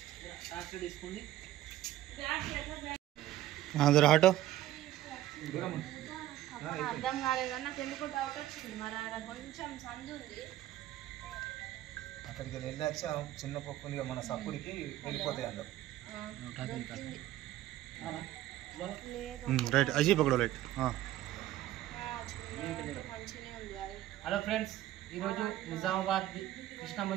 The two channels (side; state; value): left; quieter; 14.1 dB